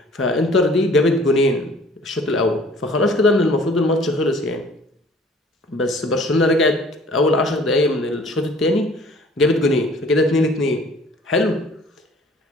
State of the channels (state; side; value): normal; both; correlation 0.53